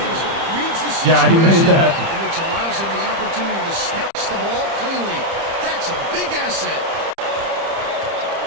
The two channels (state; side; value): late; left; 30 ms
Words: reads the situation, Yeah, he made that. and which allows him the opportunity to snatch the ball cleanly. That's a big asset.